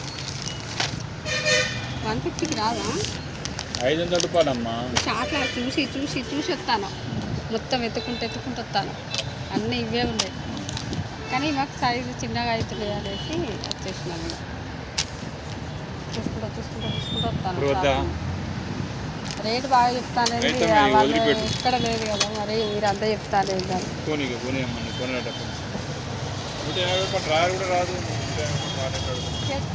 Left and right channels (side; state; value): both; identical; correlation 1.00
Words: $150కి రాదా? 500 రూపాయలమ్మా. షార్ట్లో చూసి చూసి చూసి వస్తాను, మొత్తం ఎత్తుకుంటూ వస్తాను. అన్నీ ఇవే ఉన్నాయి, కానీ మాకు సైజు చిన్నగా అవుతుంది అనేసి వచ్చేసినాను. చూసుకుంటూ వస్తాను. రేటు బాగా చెప్తాను, అయితే వాళ్ళు వదిలిపెట్టు. ఇక్కడ లేదు కదా, మరి మీరు అంతా చెప్తాను ఏంటని. పోనీ అమ్మని కొనేటప్పుడు 150 రూపాయలు డ్రాయర్ కూడా రాదు.